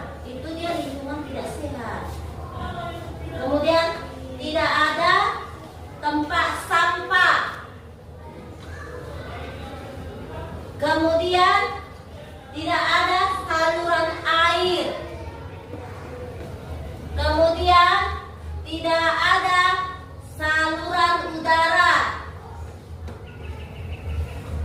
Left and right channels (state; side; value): identical; both; correlation 1.00